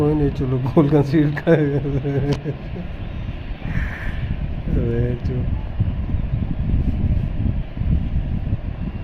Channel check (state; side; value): identical; both; correlation 1.00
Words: नहीं, चलो गोल कंसीड कर।